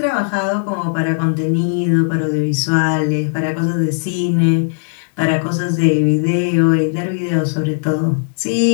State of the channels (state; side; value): silent; right; digital silence